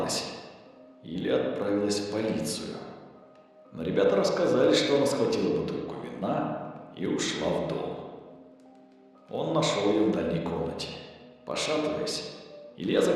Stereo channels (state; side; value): identical; both; correlation 1.00